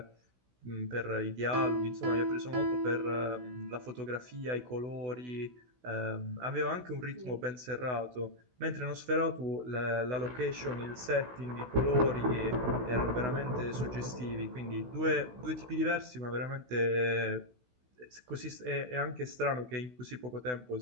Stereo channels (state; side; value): late; left; 16 ms